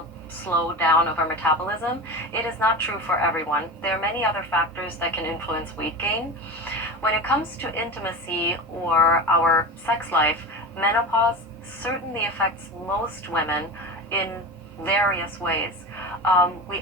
slowdown of our metabolism. It is not true for everyone. There are many other factors that can influence weight gain. When it comes to intimacy or our sex life, menopause certainly affects most women in various ways. We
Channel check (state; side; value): normal; both; correlation 0.28